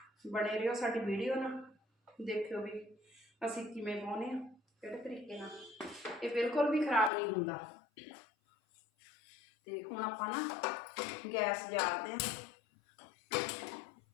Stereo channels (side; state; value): right; drops out; at 7.1 s